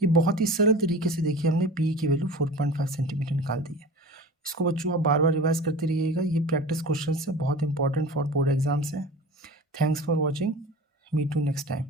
ये बहुत ही सरल तरीके से देखिए हमने पी की वैल्यू 4.5 सेंटीमीटर निकाल दी है। इसको बच्चों आप बार बार रिवाइज करते रहिएगा, ये प्रैक्टिस क्वेश्चन है, बहुत इंपॉर्टेंट फॉर बोर्ड एग्जाम्स है। Thanks for watching, meet you next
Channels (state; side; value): normal; both; correlation 0.36